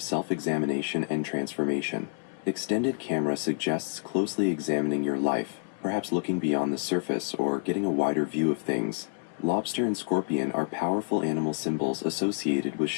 self-examination and transformation. Extended camera suggests closely examining your life, perhaps looking beyond the surface or getting a wider view of things. Lobster and scorpion are powerful animal symbols associated with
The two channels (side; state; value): right; silent; digital silence